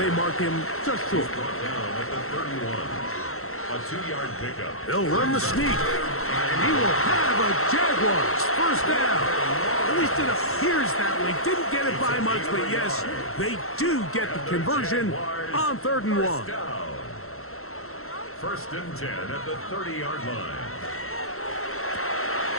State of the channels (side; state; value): right; late; 0.63 ms